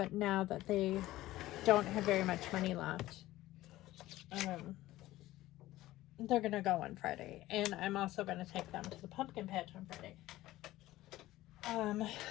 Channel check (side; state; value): right; quieter; 16.3 dB